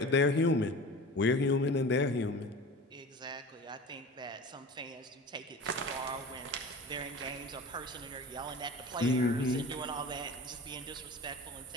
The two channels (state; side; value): normal; both; correlation 0.36